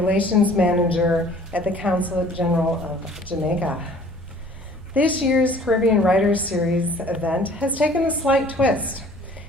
Manager at the Consulate General of Jamaica. This year's Caribbean Writers Series event has taken a slight twist.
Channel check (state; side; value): normal; both; correlation 0.52